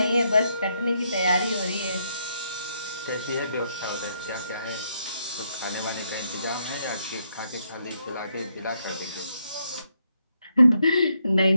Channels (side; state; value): both; inverted; correlation -0.77